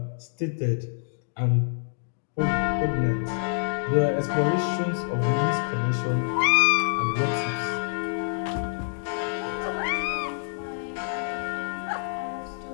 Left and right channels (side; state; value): right; silent; digital silence